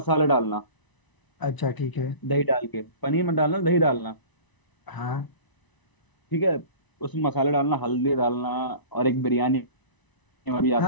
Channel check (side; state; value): right; late; 1.0 ms